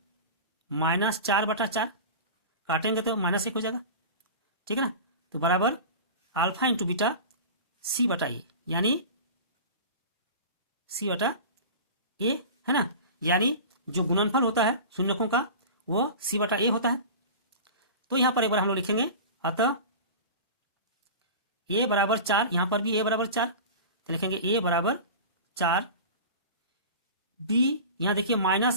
-4/4, काटेंगे तो -1 हो जाएगा, ठीक है ना। तो बराबर अल्फा × बीटा c/a, यानी c/a है ना, यानी जो गुणनफल होता है शून्यकों का वो c/a होता है। तो यहां पर एक बार हम लोग लिखेंगे, अतः a बराबर 4, यहां पर भी a बराबर 4, तो लिखेंगे a बराबर 4, b यहां देखिए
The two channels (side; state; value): both; inverted; correlation -0.33